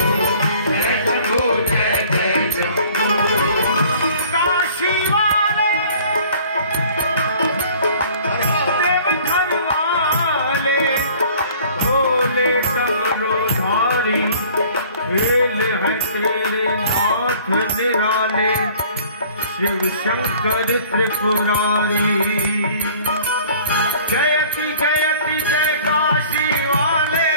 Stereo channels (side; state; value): both; inverted; correlation -0.51